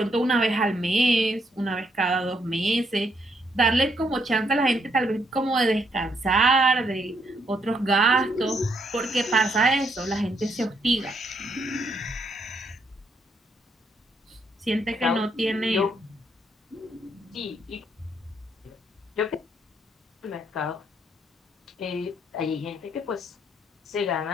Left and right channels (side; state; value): both; normal; correlation 0.74